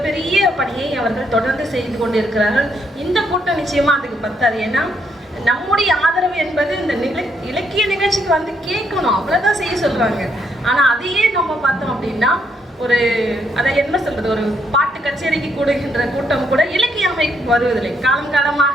பணியை அவர்கள் தொடர்ந்து செய்து கொண்டிருக்கிறார்கள். இந்த கூட்டம் நிச்சயமா அதுக்கு பத்தாது. ஏன்னா நம்முடைய ஆதரவு என்பது இந்த இலக்கிய நிகழ்ச்சிக்கு கேட்கணும், அவ்வளவுதான் செய்ய சொல்றாங்க. ஆனா அதையே நம்ம பார்த்தோம் அப்படின்னா, அதை என்ன சொல்றது, ஒரு பாட்டு கச்சேரிக்கு கூடுகின்ற கூட்டம் கூட இலக்கிய அமைப்பு வருவதில்லை. காலம்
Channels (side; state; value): both; normal; correlation 0.74